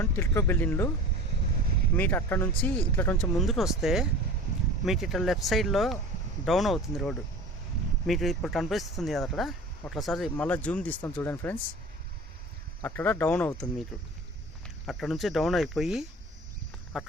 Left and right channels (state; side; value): normal; both; correlation 0.38